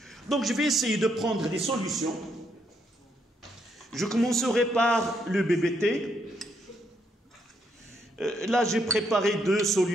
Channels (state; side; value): normal; both; correlation 0.75